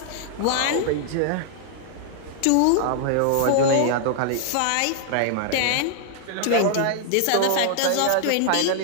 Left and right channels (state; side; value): different; both; correlation -0.01